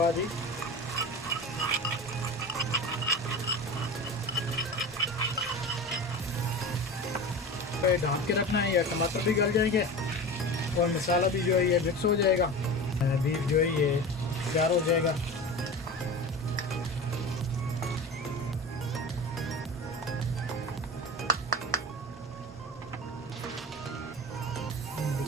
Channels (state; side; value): normal; both; correlation 0.31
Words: पे ढाँप के रखना है, या टमाटर भी गल जाएंगे और मसाला भी जो है ये मिक्स हो जाएगा। बीफ जो है ये तैयार हो जाएगा।